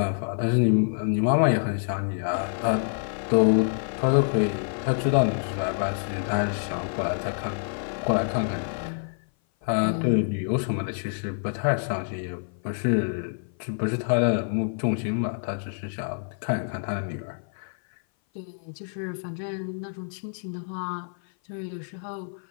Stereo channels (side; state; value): right; silent; 56 dB below the other